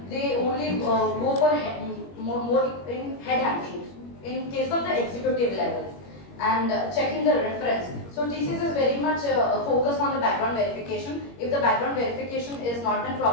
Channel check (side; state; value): right; late; 21 ms